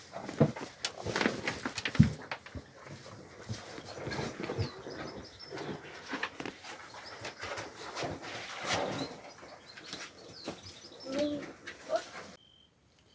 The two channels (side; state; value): both; identical; correlation 1.00